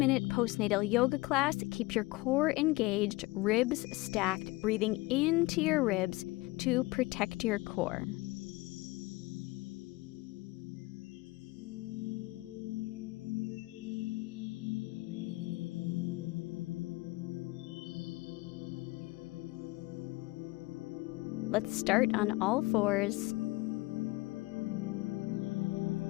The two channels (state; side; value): quieter; right; 21.8 dB